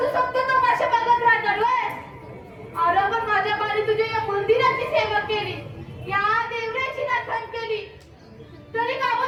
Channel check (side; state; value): both; identical; correlation 1.00